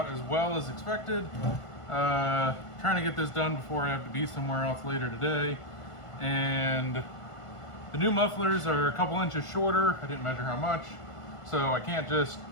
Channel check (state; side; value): late; right; 1.5 ms